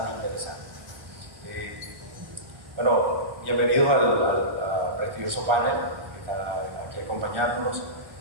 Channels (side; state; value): left; late; 1.3 ms